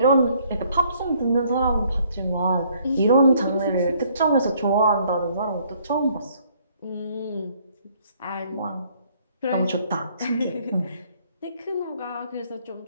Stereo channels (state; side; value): inverted; both; correlation -0.64